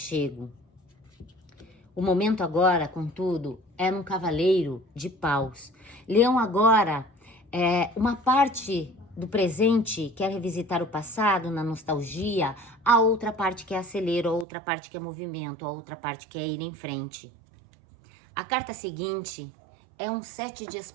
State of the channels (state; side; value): drops out; left; at 14.5 s